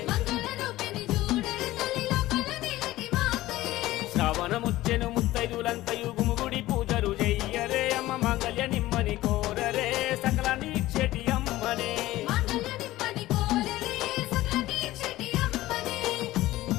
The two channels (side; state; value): right; quieter; 16.6 dB